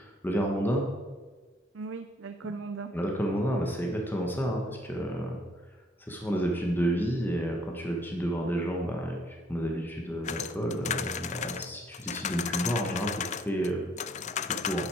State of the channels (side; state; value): both; normal; correlation 0.64